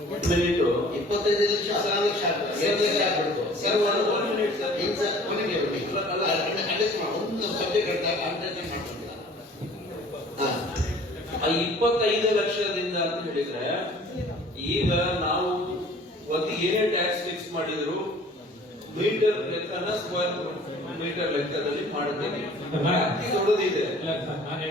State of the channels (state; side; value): normal; both; correlation 0.50